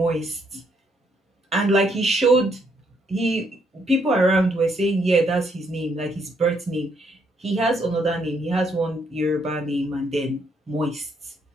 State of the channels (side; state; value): both; normal; correlation 0.72